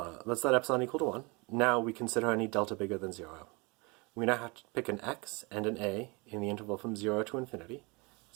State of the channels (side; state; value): left; quieter; 28.1 dB